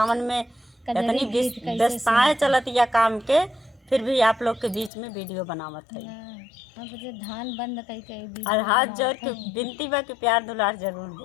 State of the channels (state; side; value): drops out; right; at 4.9 s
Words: में इतनी व्यस्तताएं चलत या काम के फिर भी आप लोग के बीच में वीडियो बनावत है। धान बंद कई और हाथ जोड़ के विनती बा कि प्यार दुलार जरूर